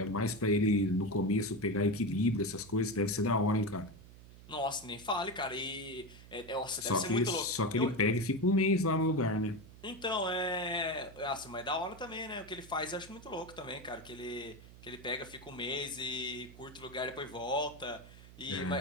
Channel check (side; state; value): right; noise; hum, 19 dB below the sound